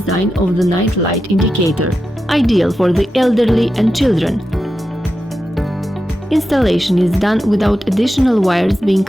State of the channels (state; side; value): normal; both; correlation 0.89